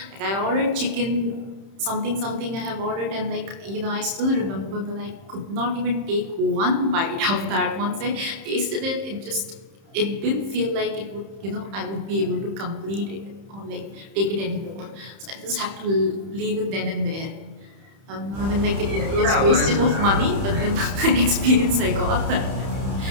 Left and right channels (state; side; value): late; left; 31 ms